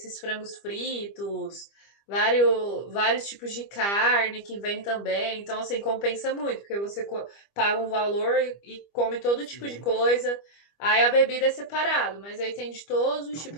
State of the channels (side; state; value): right; late; 25 ms